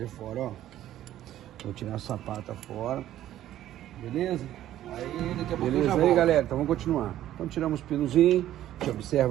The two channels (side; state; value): left; quieter; 12.8 dB